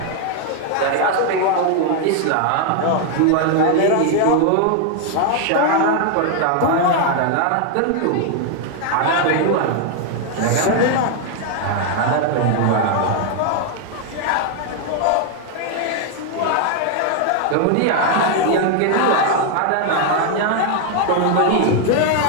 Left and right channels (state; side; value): different; both; correlation 0.00